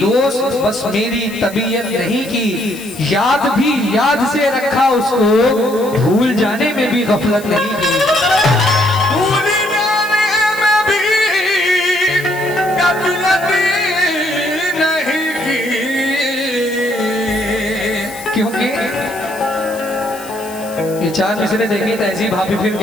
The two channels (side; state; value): left; noise; hiss, 17 dB below the sound